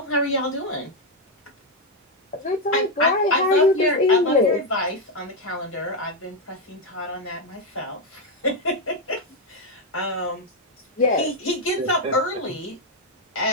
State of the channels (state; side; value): normal; both; correlation 0.04